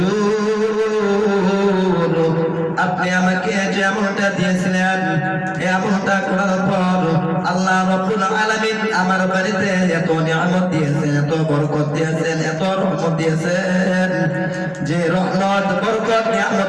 আপনি আমাকে যে আমলটা দিয়েছিলেন, এই আমলটা করার পর আল্লাহ রাব্বুল আলামিন আমার বাড়িতে এত নিয়ামত দিয়েছেন, এত বরকত দিয়েছেন, এত রহমত দিয়েছেন, যে রহমত বরকত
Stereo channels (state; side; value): identical; both; correlation 1.00